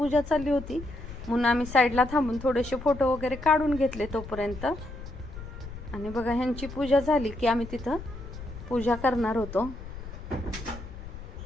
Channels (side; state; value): left; noise; rumble, 12 dB below the sound